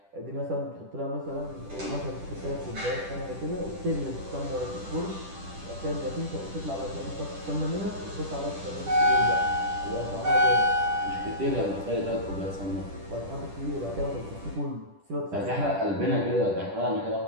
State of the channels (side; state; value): left; late; 10 ms